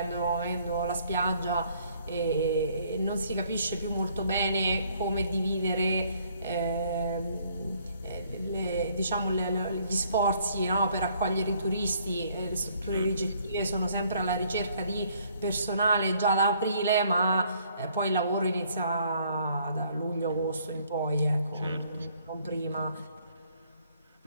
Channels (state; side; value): inverted; both; correlation -0.64